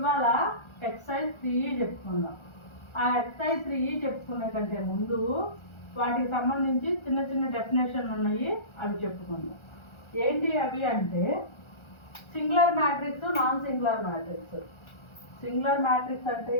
exercise 3 చెప్పుకుందాం. ఆ ఎక్సర్సైజ్ 3 చెప్పుకునే కంటే ముందు వాటికి సంబంధించి చిన్న చిన్న డెఫినేషన్లు ఉన్నాయి, అవి చెప్పుకుందాం. ఏంటి అవి అంటే singular matrix, non singular matrix. Singular matrix అంటే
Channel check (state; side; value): late; right; 1.4 ms